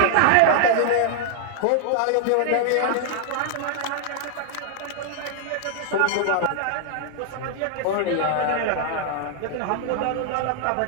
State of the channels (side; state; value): both; different; correlation 0.00